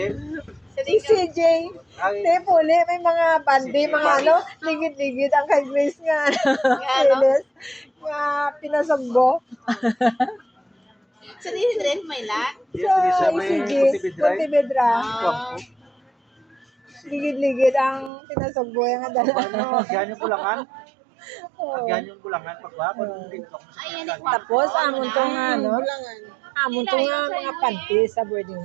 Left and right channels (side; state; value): left; drops out; at 18.1 s